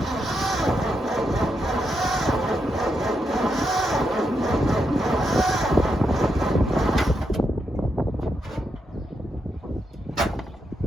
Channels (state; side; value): normal; both; correlation 0.82